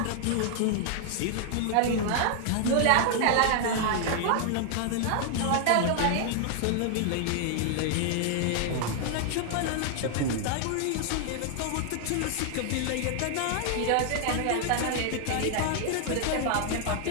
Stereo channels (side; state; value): both; different; correlation 0.00